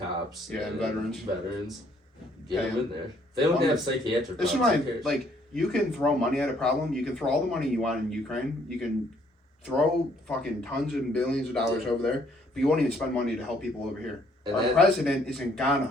Yeah, and veterans. Get Pay them in there. They don't Well, have psychiatric This is problems. why, Who cares? like, you can throw money at a problem. You can throw all the money you want in Ukraine. You can throw fucking tons and billions of dollars over there, but you won't even spend money to help people over here. And Our that- president is in Ghana,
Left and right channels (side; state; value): both; normal; correlation 0.65